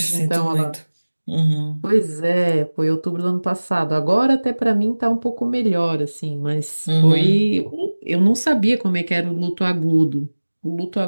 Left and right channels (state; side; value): inverted; both; correlation -1.00